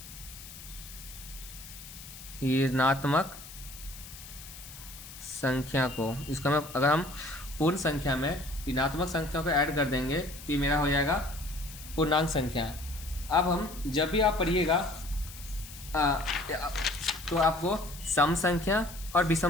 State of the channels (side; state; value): left; noise; hiss, 15 dB below the sound